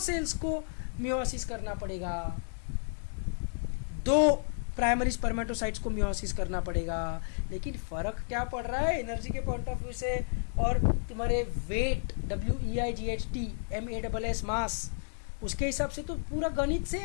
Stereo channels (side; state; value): right; silent; digital silence